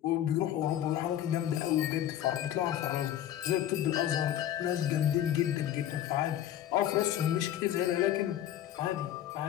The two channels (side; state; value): right; quieter; 11.6 dB